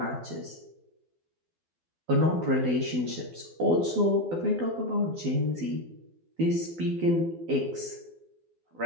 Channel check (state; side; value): late; left; 12 ms